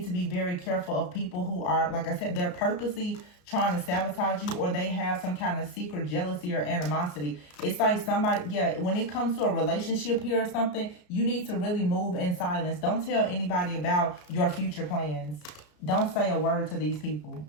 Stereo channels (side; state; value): right; late; 33 ms